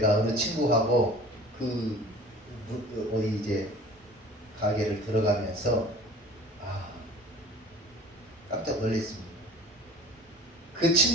어느 친구하고 어디 이제 가게를 들어가면서 깜짝 놀랐습니다. 그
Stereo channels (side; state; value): both; normal; correlation 0.43